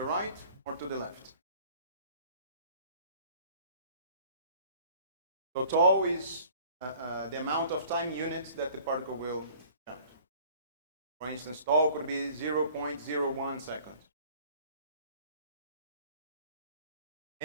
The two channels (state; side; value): inverted; both; correlation -0.52